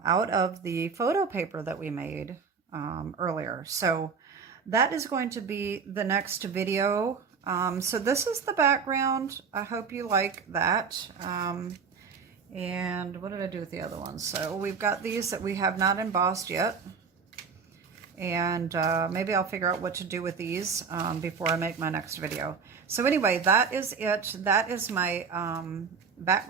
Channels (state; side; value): quieter; left; 5.8 dB